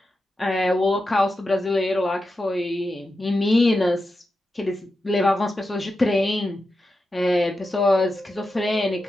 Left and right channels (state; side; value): normal; both; correlation 0.90